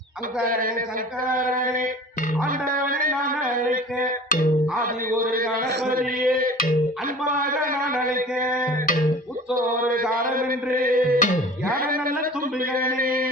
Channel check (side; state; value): both; normal; correlation 0.42